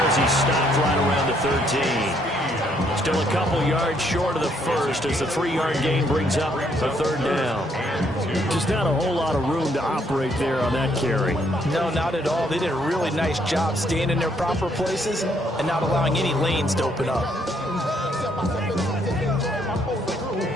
as he stopped right around the 13. Still a couple yards short of the first as the 3-yard gain brings up a 3rd down. Just not a whole lot of room to operate there on that carry. No, not at all. They did a really nice job staying in their proper places and not allowing any lanes to open up.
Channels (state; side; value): normal; both; correlation 0.70